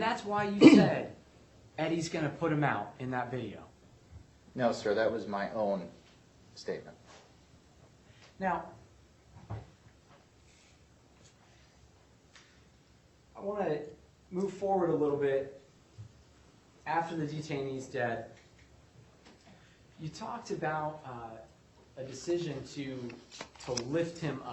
why you said Eddie's going to put him out in that video. No, sir, that was my own statement. Now, I want to move forward a little bit after the detainee's dead. You talked about a decision to lift him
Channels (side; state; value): both; identical; correlation 1.00